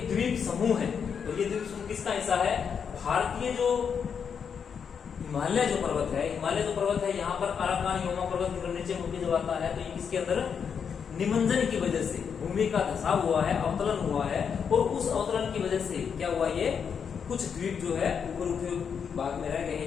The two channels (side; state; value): right; quieter; 6.9 dB